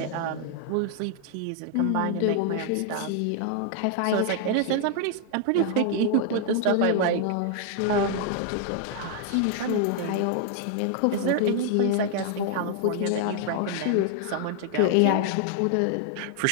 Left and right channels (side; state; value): both; different; correlation 0.00